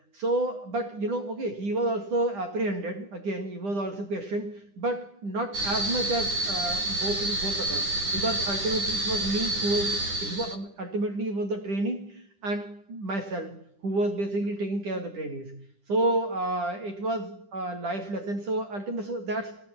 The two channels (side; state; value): left; late; 10 ms